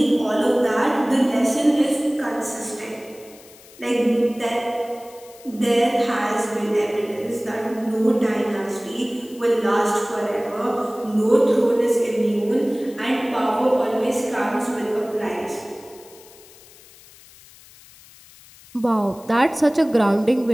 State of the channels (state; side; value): noise; left; hiss, 23 dB below the sound